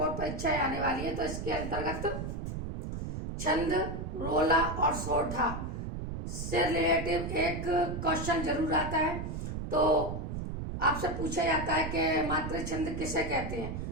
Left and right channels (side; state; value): right; noise; rumble, 5 dB below the sound